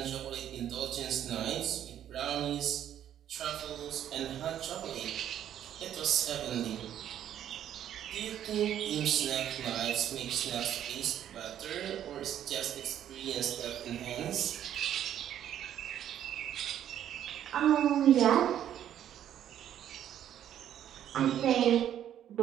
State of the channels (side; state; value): left; quieter; 10.6 dB